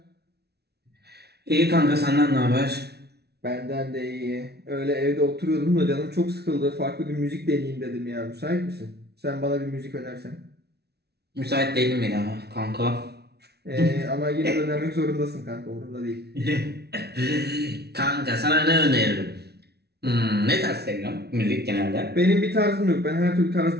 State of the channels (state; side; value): late; left; 0.48 ms